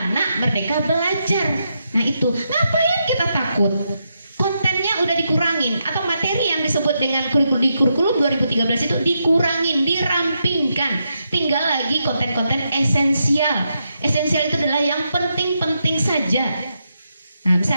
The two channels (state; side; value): inverted; both; correlation -0.83